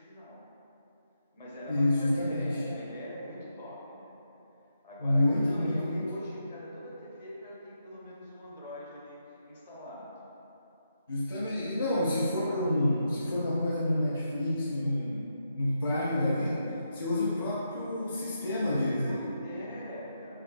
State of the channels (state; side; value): inverted; both; correlation -0.84